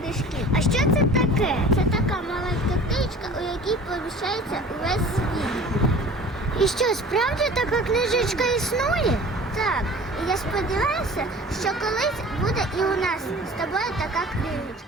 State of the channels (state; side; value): normal; both; correlation 0.43